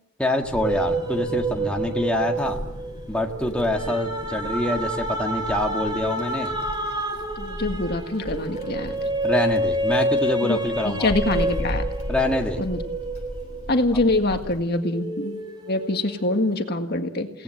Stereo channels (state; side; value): normal; both; correlation 0.47